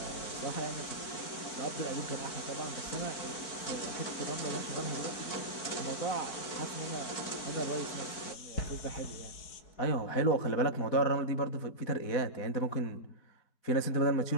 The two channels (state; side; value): late; right; 4.5 ms